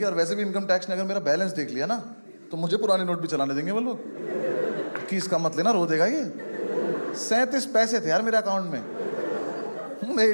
और वैसे भी इनकम टैक्स ने अगर मेरा बैलेंस देख लिया ना तो मुझे पुराने नोट भी चलाने देंगे वो लोग कि इसका मत लेना, रो देगा ये। 37 पैसे थे यार मेरे अकाउंट में। मैं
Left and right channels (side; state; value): both; inverted; correlation -1.00